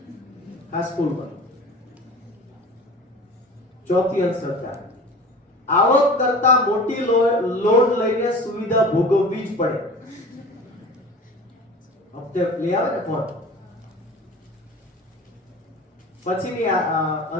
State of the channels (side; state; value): both; normal; correlation 0.39